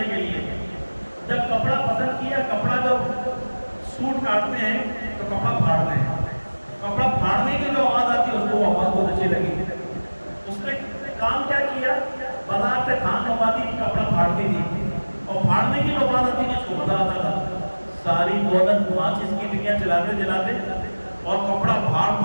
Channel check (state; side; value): inverted; both; correlation -1.00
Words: کے لیے، جب کپڑا پسند کیا، کپڑا جب سوٹ کاٹتے ہیں تو کپڑا پھاڑتے ہیں، کپڑا پھاڑنے کی جو آواز آتی ہے اس کو وہ آواز بہت اچھی لگی، اس نے کام کیا کیا؟ بازار سے تھان منگواتی تھی، کپڑا پھاڑتی تھی، اور پھاڑنے کی جو آواز آتی تھی اس کو مزہ آتا تھا۔ ساری دولت ماچس کی تیریاں جلاتے جلاتے اور کپڑا پھاڑ